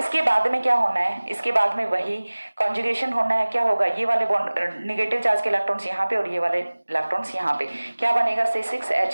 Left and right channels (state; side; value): inverted; both; correlation -1.00